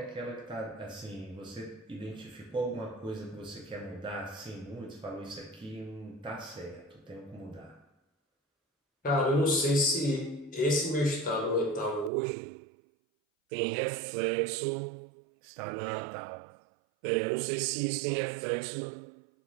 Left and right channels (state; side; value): drops out; left; at 12.1 s